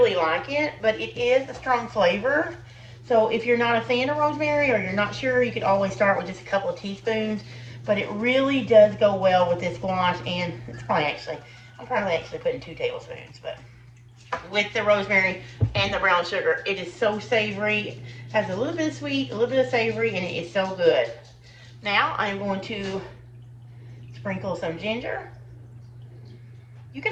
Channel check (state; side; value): identical; both; correlation 1.00